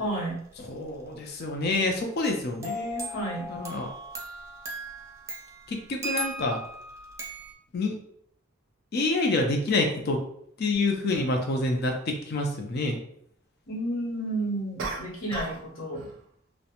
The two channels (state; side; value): normal; both; correlation 0.38